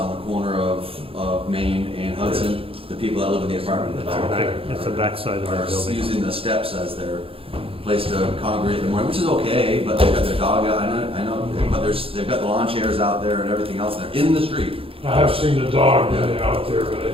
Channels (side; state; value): left; late; 0.27 ms